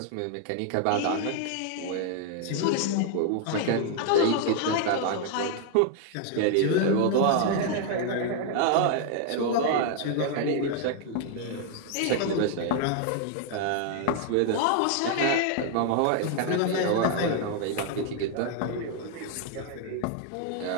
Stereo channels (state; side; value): different; both; correlation 0.00